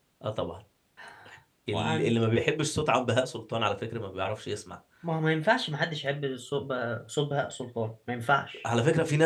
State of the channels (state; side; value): identical; both; correlation 1.00